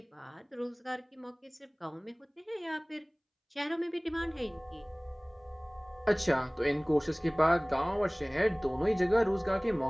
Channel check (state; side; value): identical; both; correlation 1.00